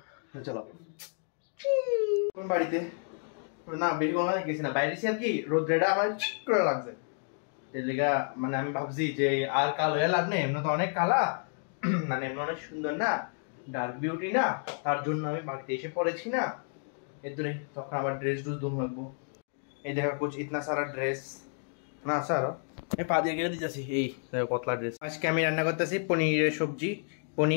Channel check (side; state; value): right; silent; 57 dB below the other